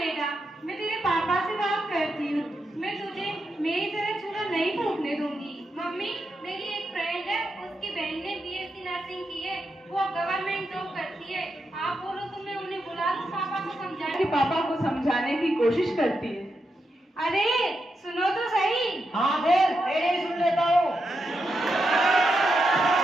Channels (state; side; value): normal; both; correlation 0.85